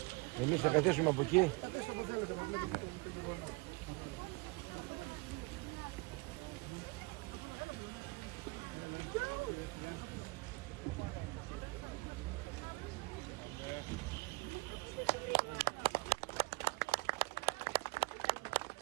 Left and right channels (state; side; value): quieter; left; 24.2 dB